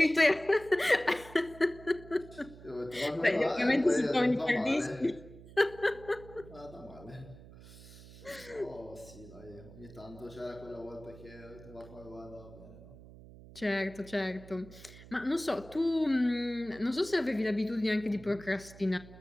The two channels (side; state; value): right; noise; hum, 18 dB below the sound